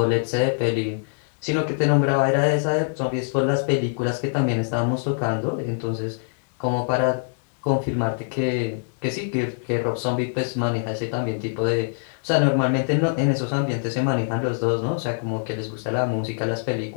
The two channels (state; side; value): silent; right; digital silence